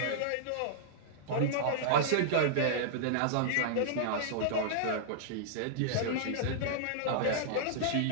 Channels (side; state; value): both; different; correlation -0.02